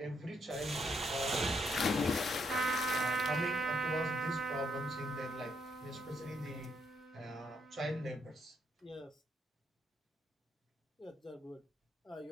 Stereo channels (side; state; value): both; normal; correlation 0.73